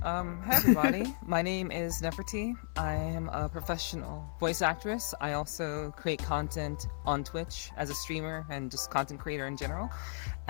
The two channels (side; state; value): right; silent; 55 dB below the other